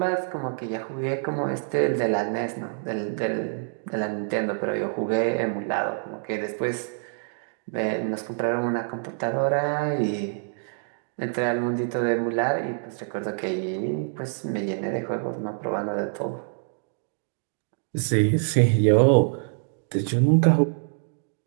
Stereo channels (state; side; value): silent; left; digital silence